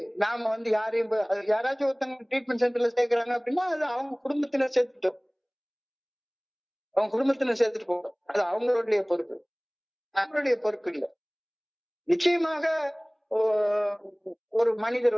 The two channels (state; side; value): identical; both; correlation 1.00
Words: நாம வந்து யாராச்சும் ஒருத்தவங்க ட்ரீட்மெண்ட் சென்டர்ல சேர்க்கிறாங்க அப்படின்னா அது அவங்க குடும்பத்தினர் சேர்த்துட்டோம், சேர்த்துட்டு போகும். அது அவங்களுடைய பொறுப்பு, நம்மளுடைய பொறுப்பு இல்லை. நிச்சயமாக ஒரு மனிதர்